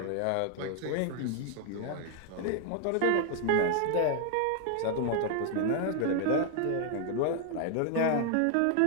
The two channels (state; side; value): different; both; correlation 0.00